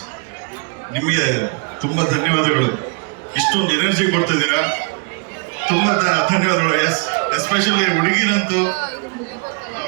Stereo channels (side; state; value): left; quieter; 34.1 dB